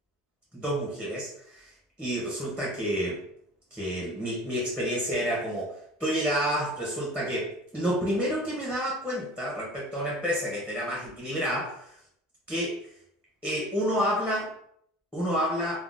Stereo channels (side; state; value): both; normal; correlation 0.43